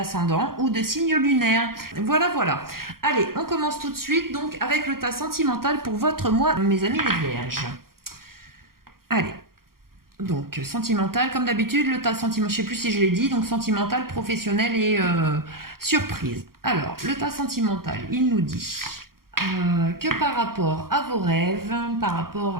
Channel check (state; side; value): late; left; 0.92 ms